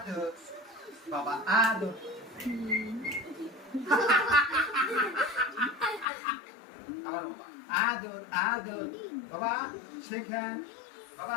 বাবা আদর আমার বাবা আদর আদর বাবা শেখান বাবা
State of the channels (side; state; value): right; drops out; at 6.1 s